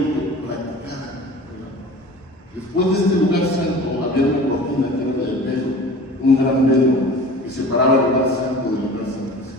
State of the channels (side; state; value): both; normal; correlation 0.40